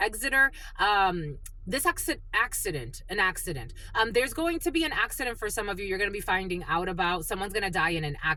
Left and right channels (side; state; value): both; identical; correlation 1.00